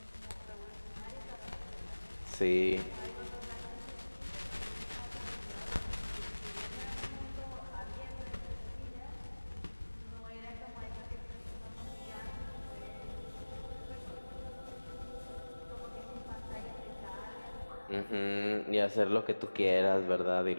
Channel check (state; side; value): inverted; both; correlation -1.00